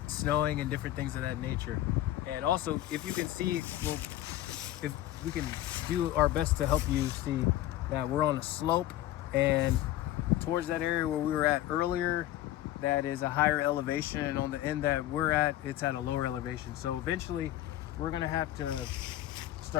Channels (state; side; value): quieter; right; 14.0 dB